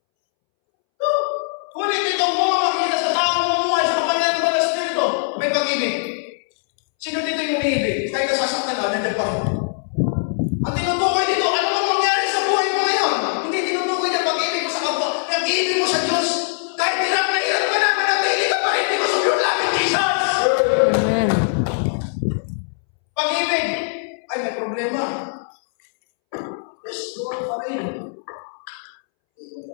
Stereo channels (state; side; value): silent; right; 65 dB below the other